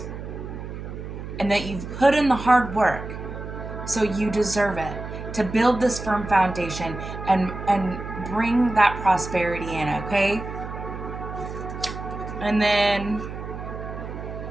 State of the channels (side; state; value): right; noise; hum, 9 dB below the sound